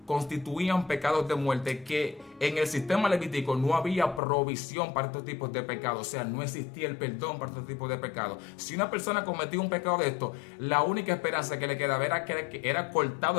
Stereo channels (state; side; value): drops out; right; at 4.2 s